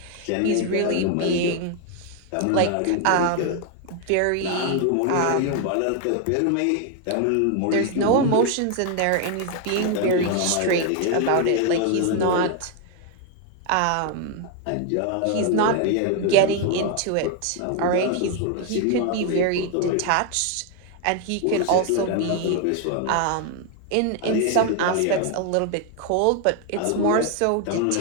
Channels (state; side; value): different; both; correlation 0.00